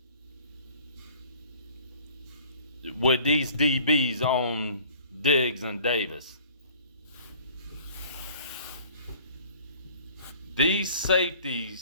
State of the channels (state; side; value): inverted; both; correlation -0.52